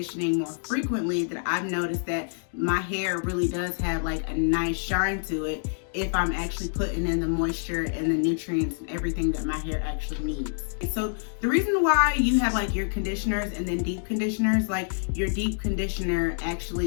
more frequently that I've noticed that my hair really does have like a nice shine to it if I'm actually putting in the moisture and the nutrients and everything that my hair actually needs. So the reason why you have like your conditioners and then deep conditioners, like your deep conditioner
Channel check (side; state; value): right; silent; digital silence